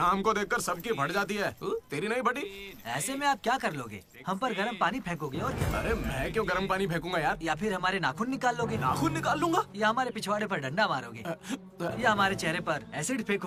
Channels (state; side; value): identical; both; correlation 1.00